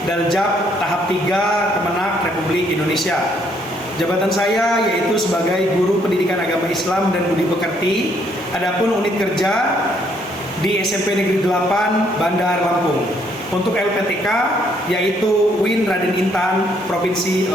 Daljab tahap 3 Kemenak Republik Indonesia. Jabatan saya yaitu sebagai guru pendidikan agama Islam dan budi pekerti. Adapun unit kerja di SMP Negeri 8 Bandar Lampung. Untuk LPTK yaitu Win Raden Intan Provinsi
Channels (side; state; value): both; normal; correlation 0.69